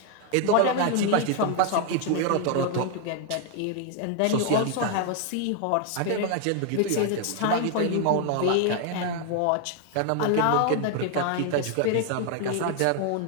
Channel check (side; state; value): both; different; correlation 0.00